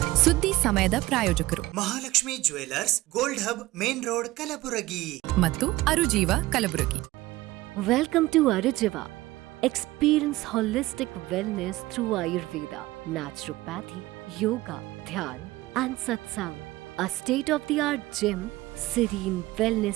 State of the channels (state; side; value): quieter; left; 18.2 dB